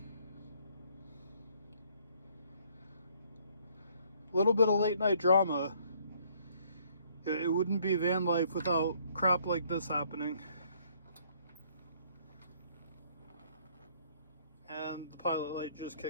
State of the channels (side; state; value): both; inverted; correlation -0.64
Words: A little bit of late night drama. It wouldn't be van life without crap like this happening. And the pilot light just